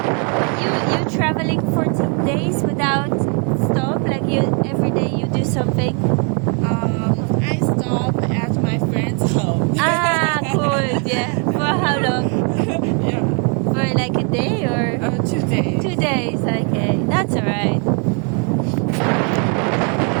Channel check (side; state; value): left; quieter; 38.3 dB